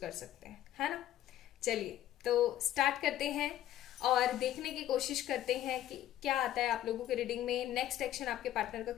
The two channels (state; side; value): quieter; right; 12.6 dB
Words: सकते हैं, है ना। चलिए तो स्टार्ट करते हैं और देखने की कोशिश करते हैं कि क्या आता है आप लोगों के रीडिंग में। नेक्स्ट एक्शन आपके पार्टनर का